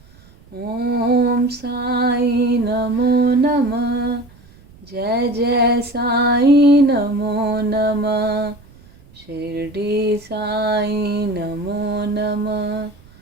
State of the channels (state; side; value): noise; right; rumble, 25 dB below the sound